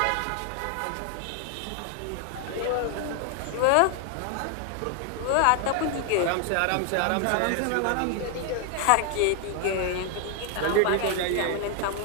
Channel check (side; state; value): both; different; correlation 0.00